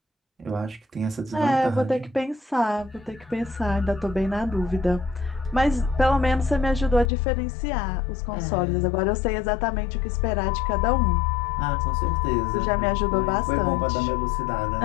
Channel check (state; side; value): drops out; right; at 7.1 s